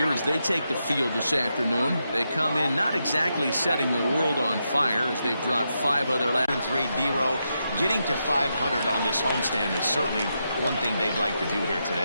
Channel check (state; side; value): inverted; both; correlation -0.84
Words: as they take the field this afternoon, they come in not exactly setting the world on fire as they've dropped 5 of their last 3. D-Row getting to 500 on this homestand is certainly one thing they'd like to do here